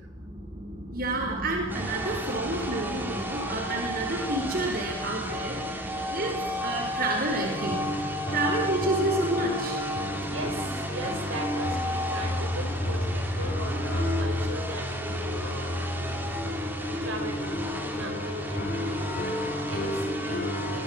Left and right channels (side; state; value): both; normal; correlation 0.47